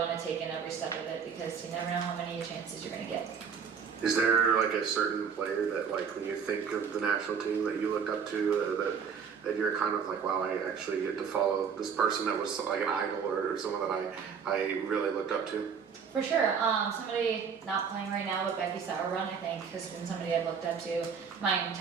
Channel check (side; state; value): left; quieter; 6.6 dB